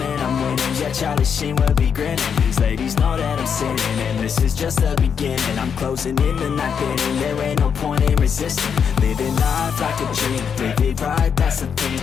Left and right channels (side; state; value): right; quieter; 7.1 dB